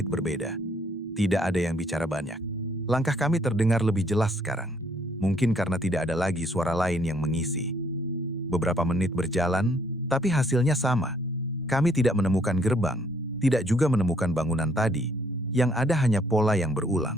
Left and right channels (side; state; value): both; normal; correlation 0.66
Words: berbeda. Tidak ada yang bicara banyak. Langkah kami terdengar lebih jelas sekarang. Mungkin karena tidak ada lagi suara lain yang mengisi. Beberapa menit berjalan, tapi hasilnya sama. Kami tidak menemukan gerbang, tidak juga menemukan bangunan tadi. Yang ada hanya pola yang